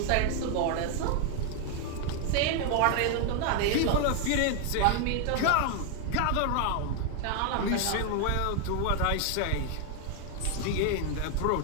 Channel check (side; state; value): both; different; correlation 0.00